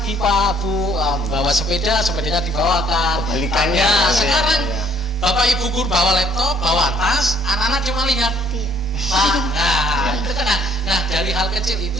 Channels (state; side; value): normal; both; correlation 0.61